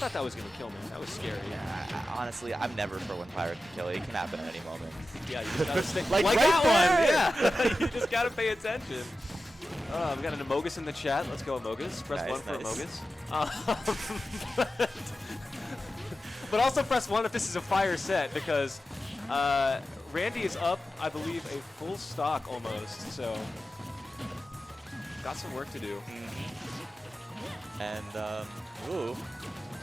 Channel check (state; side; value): normal; both; correlation 0.93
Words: that was going to kill me. That was scary. Honestly, I'm never for when Pyro can kill. It can happen at any moment. Yeah, you just gotta stay Like that right one. Yeah, you just gotta pay attention. We got an Amogus in the chat. Let's go Amogus. Press Nice, 1 for nice. Amogus. But also press 1 if this is a fire set, because Randy is up, I believe, a full stock almost. So got some work to do. And ooh,